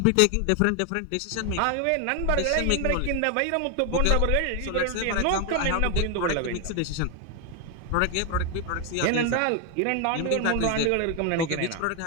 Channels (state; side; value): different; both; correlation 0.01